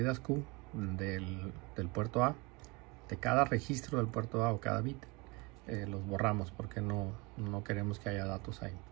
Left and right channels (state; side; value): quieter; left; 26.8 dB